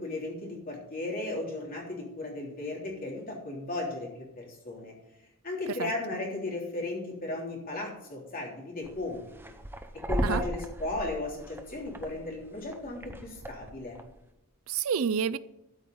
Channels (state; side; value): normal; both; correlation 0.23